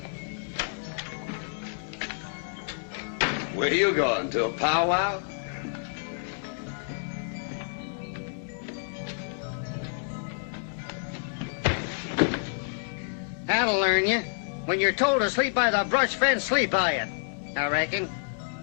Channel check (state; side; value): silent; right; 59 dB below the other